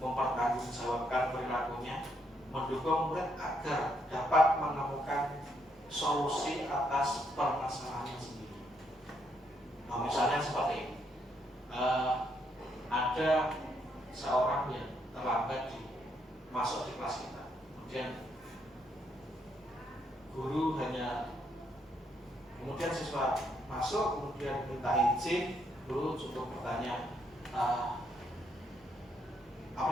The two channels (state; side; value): normal; both; correlation 0.75